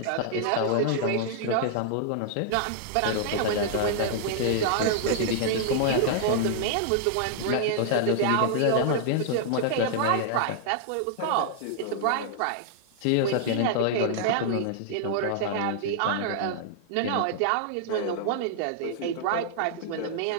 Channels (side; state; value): both; different; correlation -0.01